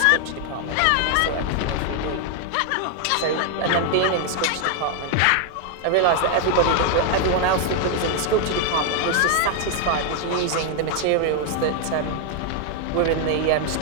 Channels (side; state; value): both; different; correlation 0.00